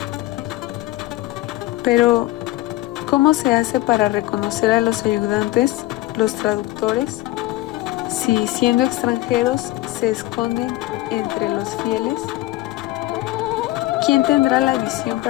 Pero, ¿cómo se hace para reconocer a los ayudantes, los traductores, si siendo extranjeros se esconden entre los fieles? ¿Quién tendrá la visión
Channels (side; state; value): right; quieter; 17.5 dB